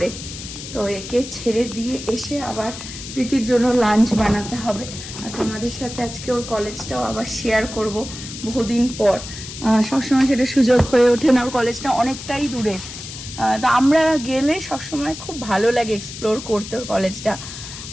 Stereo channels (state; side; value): noise; left; hiss, 11 dB below the sound